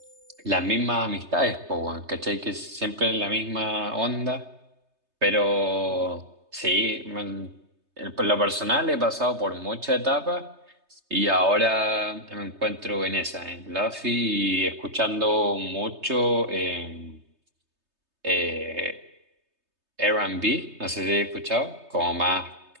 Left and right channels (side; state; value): left; late; 3.3 ms